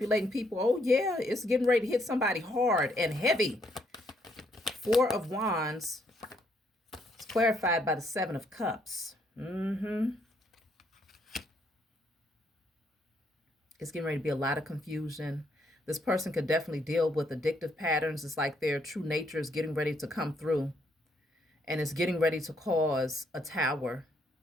people? Oh, yeah, it's getting ready to hit somebody hard and heavy. Four of Wands. It's clarified by the Seven of Cups. It's getting ready to be a lot of confusion. This person could definitely deal with addictive patterns. It's like their true nature is getting ready to come through. And it's getting ready to cause a tower.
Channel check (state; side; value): normal; both; correlation 0.72